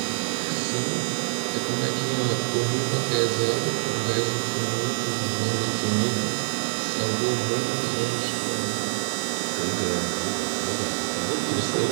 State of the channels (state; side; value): silent; left; digital silence